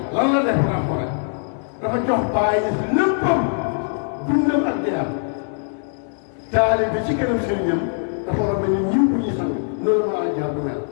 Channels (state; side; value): silent; right; 65 dB below the other